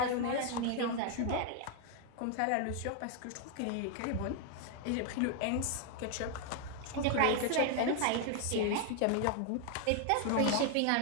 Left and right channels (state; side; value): different; both; correlation 0.00